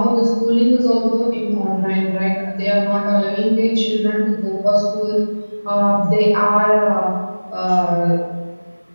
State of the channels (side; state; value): both; inverted; correlation -1.00